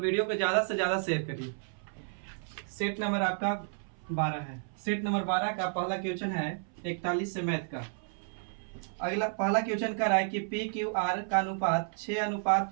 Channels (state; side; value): silent; left; 57 dB below the other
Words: को ज़्यादा से ज़्यादा शेयर करिए। सेट नंबर आपका 12 है। सेट नंबर 12 का पहला क्वेश्चन है 41 से मैथ का। अगला पहला क्वेश्चन कर रहा है कि पी क्यू आर का अनुपात